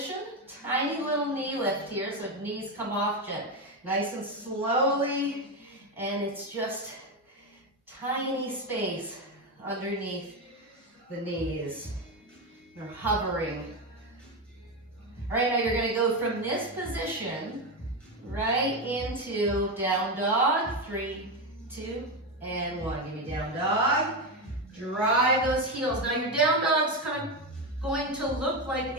Tiny little knee lift here, so knees come off nice and slowly, and it's just tiny space underneath the knees. They're hovering. All right, now you're going to go from this position right into down dog. 3, 2, and 1. Give me down dog. Drive those heels. Now your down dog's kind of going to look like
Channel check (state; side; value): normal; both; correlation 0.13